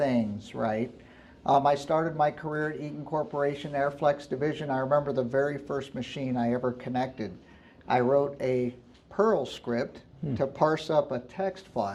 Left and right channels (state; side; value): identical; both; correlation 1.00